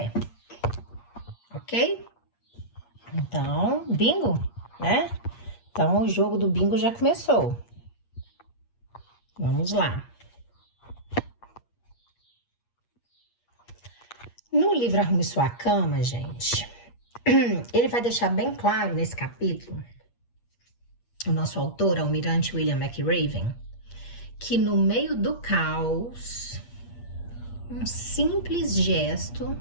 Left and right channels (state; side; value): late; right; 8.5 ms